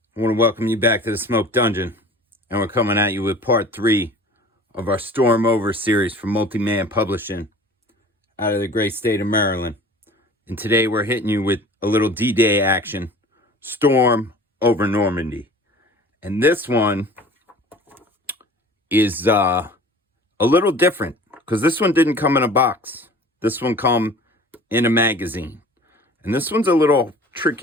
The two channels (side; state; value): both; normal; correlation 0.44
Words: I want to welcome you back to the Smoke Dungeon, and we're coming at you with part 3 of our Storm Over series from Multi-Man Publishing out of the great state of Maryland. And today we're hitting you with a little D-Day action, Storm Over Normandy. And this one is a little different, because this one didn't come in a box. This one come in a magazine. And this one's a little